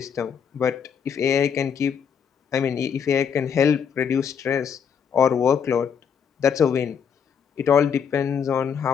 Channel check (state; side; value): quieter; right; 7.2 dB